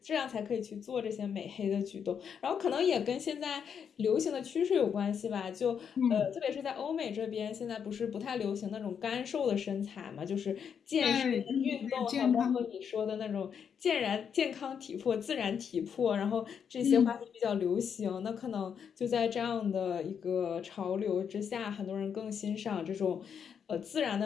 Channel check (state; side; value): quieter; right; 7.4 dB